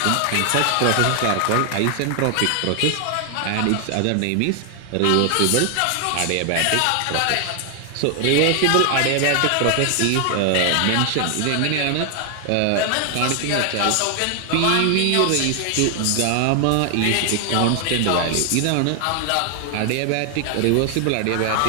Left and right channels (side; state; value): both; different; correlation 0.00